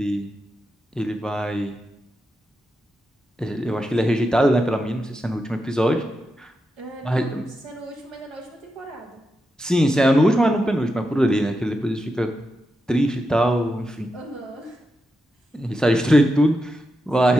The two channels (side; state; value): both; normal; correlation 0.87